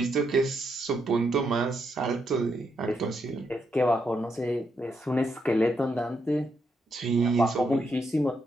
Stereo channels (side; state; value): both; normal; correlation 0.80